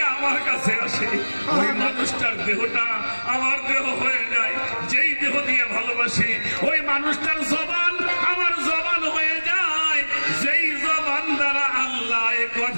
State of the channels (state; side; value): inverted; both; correlation -1.00